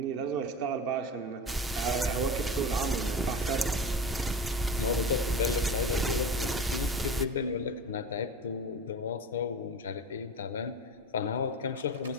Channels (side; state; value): both; normal; correlation 0.30